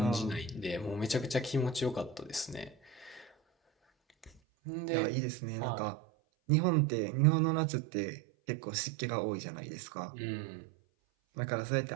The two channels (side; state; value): left; drops out; at 4.4 s